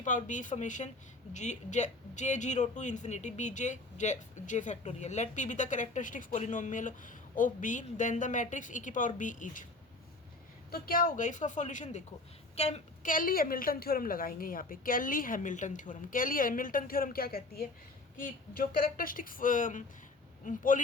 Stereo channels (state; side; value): quieter; right; 3.0 dB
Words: power B formation J zero to infinity B J factorial. Let P be the characteristics polynomial of B then the matrix E की power B is. तो क्या होगा इसका solution देखो। कैली Hamilton theorem लगाएंगे यहाँ पे। कैली हैमिल्टन थ्योरम क्या कहती है कि जो कैरेक्टरिस्टिक्स